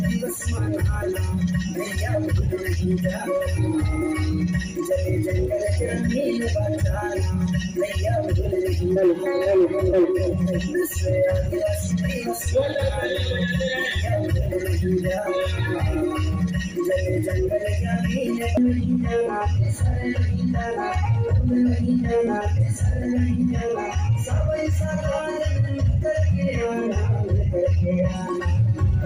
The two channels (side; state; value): both; identical; correlation 1.00